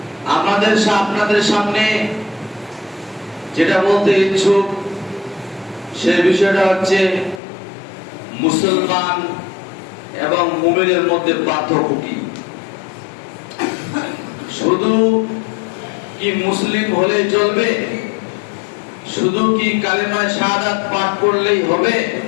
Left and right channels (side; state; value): right; drops out; at 7.4 s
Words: আপনাদের সামনে যেটা বলতে ইচ্ছুক সে বিষয়টা হচ্ছে মুসলমান এবং মুমিনের মধ্যে পার্থক্য কি। শুধু কি মুসলিম হলেই চলবে? শুধু কি কালেমায়ে শাহাদাত পাঠ করলেই হবে?